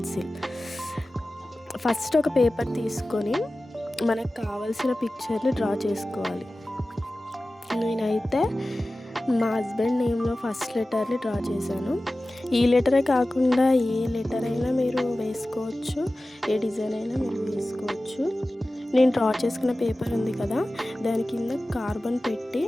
First ఒక పేపర్ తీసుకొని మనకు కావాల్సిన పిక్చర్ని డ్రా చేసుకోవాలి. నేనైతే మా హస్బెండ్ నేమ్లో ఫస్ట్ లెటర్ని డ్రా చేశాను. ఈ లెటరే కాకుండా ఏ లెటర్ అయినా మీరు వేసుకోవచ్చు, ఏ డిజైన్ అయినా మీరు వేసుకోవచ్చు. నేను డ్రా చేసుకున్న పేపర్ ఉంది కదా, దాని కింద కార్బన్ పెట్టి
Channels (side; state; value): both; normal; correlation 0.96